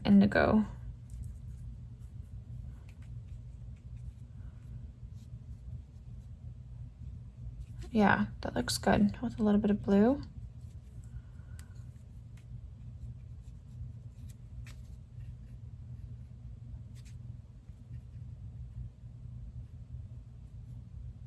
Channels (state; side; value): identical; both; correlation 1.00